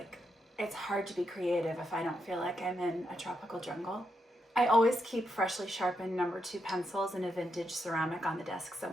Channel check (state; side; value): normal; both; correlation 0.82